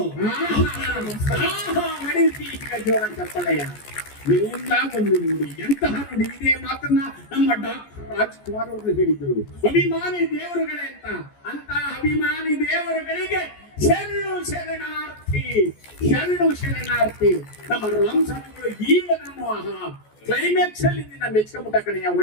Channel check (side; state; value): right; late; 14 ms